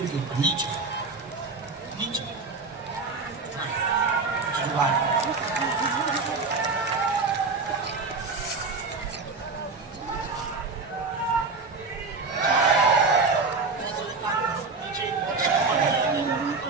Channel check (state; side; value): quieter; left; 4.2 dB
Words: नीचे नीचे जुगाड़।